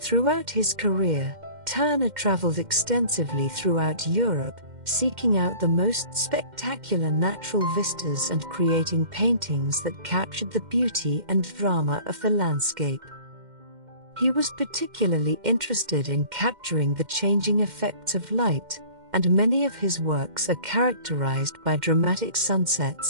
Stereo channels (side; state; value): left; late; 2.1 ms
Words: his career, Turner traveled extensively throughout Europe, seeking out the most spectacular natural vistas and creating paintings that captured the beauty and drama of the landscape. He was particularly interested in capturing the changing effects of light, and many of his works are characterized by dramatic